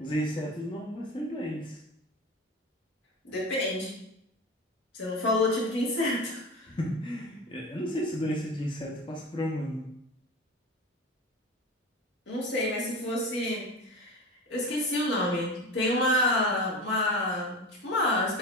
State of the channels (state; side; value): normal; both; correlation 0.30